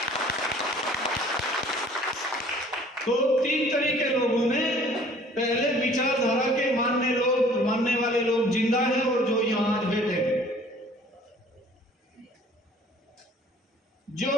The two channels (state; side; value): normal; both; correlation 0.53